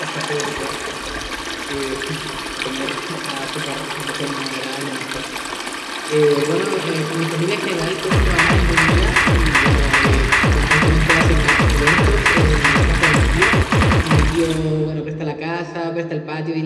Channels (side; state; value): both; identical; correlation 1.00